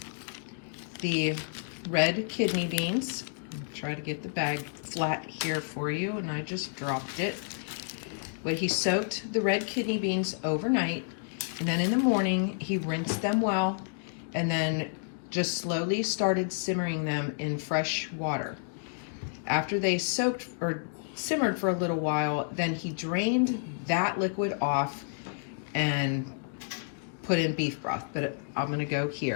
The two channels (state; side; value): silent; right; digital silence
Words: the red kidney beans. Try to get the bag flat here for you, and I just dropped it. But he soaked the red kidney beans overnight, and then in the morning he rinsed them well, and then just slowly started simmering them in fresh water. After they soaked or simmered for a little while, then he drained that liquid off and put in beef broth, but I'm gonna go